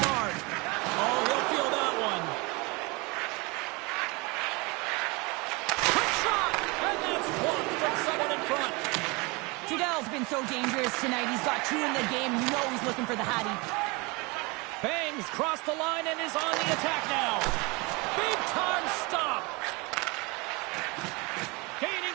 he'll feel that one. Quick shot! And that's blocked from someone in front. Trudell's been so dangerous tonight. He's got 2 in the game. You know he's looking for the Hattie. Bangs crossed the line and is on the attack now. Big time stop.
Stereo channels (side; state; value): left; quieter; 26.9 dB